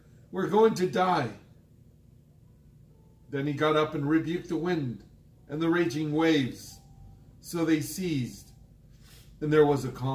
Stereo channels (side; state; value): both; identical; correlation 1.00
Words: we're going to die." Then he got up and rebuked the wind and the raging waves. So they ceased, and there was a